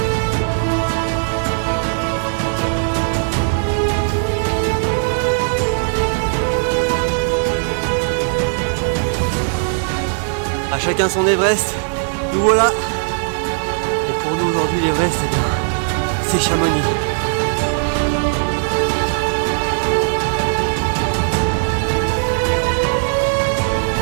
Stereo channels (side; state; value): left; silent; digital silence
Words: À chacun son Everest, nous voilà. Et pour nous aujourd'hui l'Everest, eh bien, c'est Chamonix.